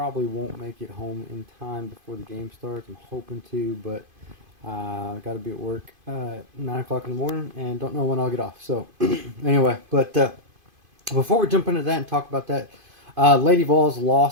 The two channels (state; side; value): late; left; 2.5 ms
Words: won't make it home in time before the game starts. I'm hoping to, but I got to be at work 9 o'clock in the morning, and don't know when I'll get off. So anyway, but before we jump into that and talk about that, Lady Vols